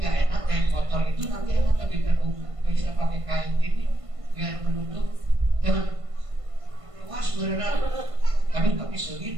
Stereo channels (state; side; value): late; left; 1.5 ms